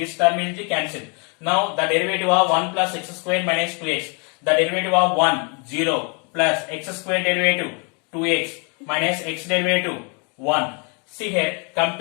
term will be cancelled. Now the derivative of 1 plus x square minus 2x. The derivative of 1, 0 plus x square derivative 2x minus x derivative 1. See here,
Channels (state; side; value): quieter; right; 35.4 dB